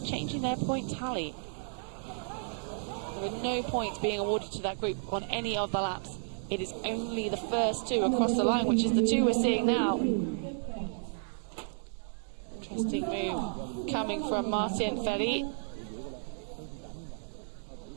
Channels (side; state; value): left; silent; digital silence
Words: their point tally. There are no points being awarded to that group on any of the laps. It is only the first two across the line, which is the two we're seeing now. Interesting move coming from Martin FERRIE.